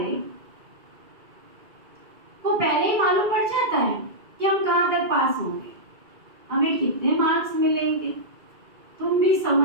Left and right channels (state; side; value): late; left; 2.3 ms